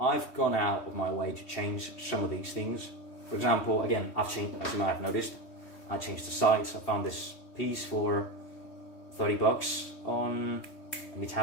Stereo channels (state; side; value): late; right; 3.2 ms